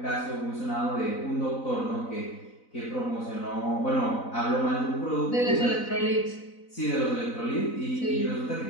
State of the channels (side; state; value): right; late; 4.0 ms